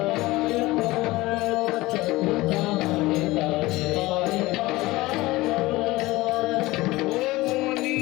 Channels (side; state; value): right; quieter; 19.6 dB